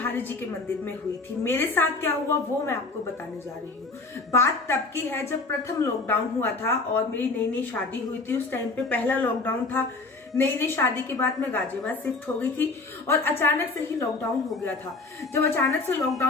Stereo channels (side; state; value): right; quieter; 3.6 dB